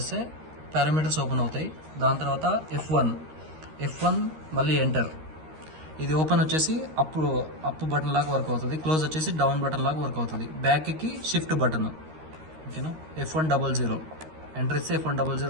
పారామీటర్స్ ఓపెన్ అవుతాయి. దాని తర్వాత F1 మళ్ళీ ఎంటర్. ఇది ఓపెన్ వచ్చేసి అప్ బటన్ లాగా వర్క్ అవుతుంది. క్లోజ్ వచ్చేసి డౌన్ బటన్ లాగా వర్క్ అవుతుంది. బ్యాక్కి షిఫ్ట్ బటన్. ఓకేనా. F100 ఎంటర్ ఇస్తే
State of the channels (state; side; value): late; left; 13 ms